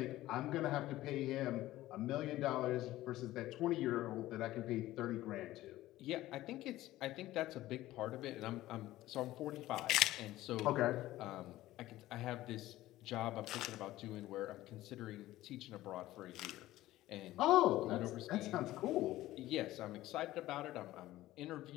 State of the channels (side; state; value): right; quieter; 15.9 dB